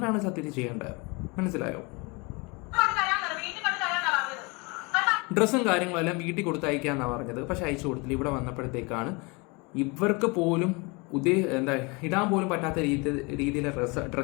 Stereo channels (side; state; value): right; quieter; 28.3 dB